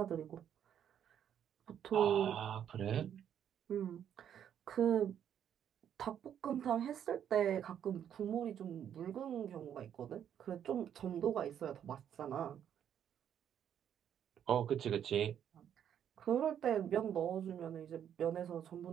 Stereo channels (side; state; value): left; quieter; 9.4 dB